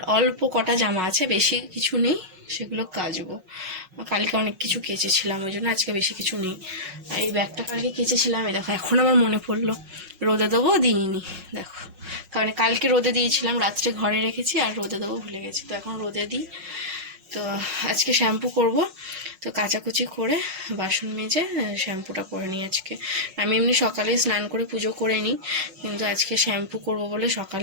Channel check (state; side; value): late; left; 5.5 ms